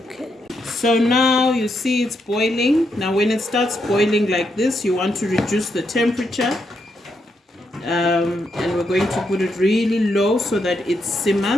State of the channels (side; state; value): both; normal; correlation 0.80